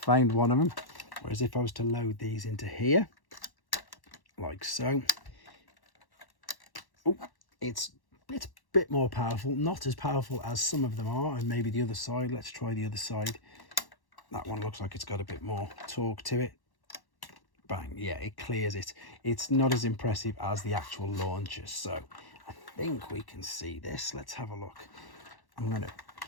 one of them. Whereas if I was to load these into here, like so, oh, it's a bit more powerful. Not as powerful as some of them are, and maybe the other side. Let's try the other side. That one looks like it's got a bit more torque to it. Bang, yeah, it clears it. It's not as impressive as the actual launcher. So I think we can see this. Let's have a look. I'm going to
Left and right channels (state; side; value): late; right; 1.1 ms